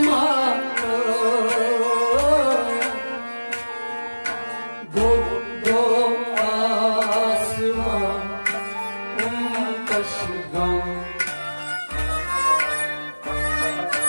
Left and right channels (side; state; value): both; inverted; correlation -1.00